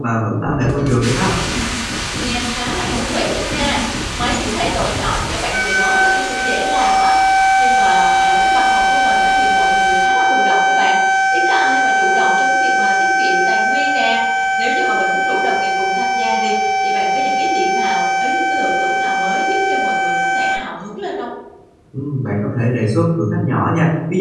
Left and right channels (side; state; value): both; identical; correlation 1.00